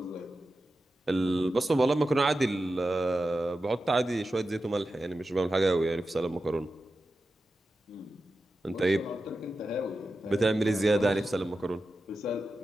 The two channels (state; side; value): normal; both; correlation 0.92